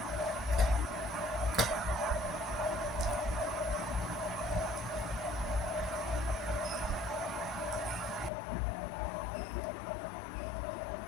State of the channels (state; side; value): drops out; right; at 8.3 s